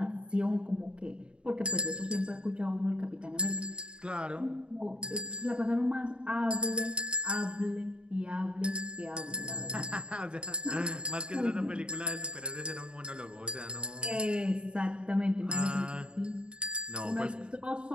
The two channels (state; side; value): late; left; 0.054 ms